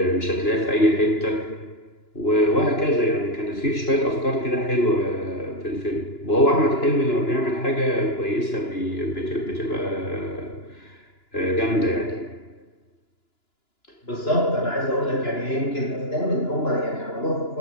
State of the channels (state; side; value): late; right; 2.9 ms